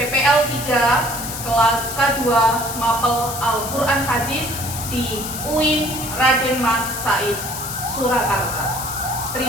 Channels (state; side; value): noise; left; hiss, 7 dB below the sound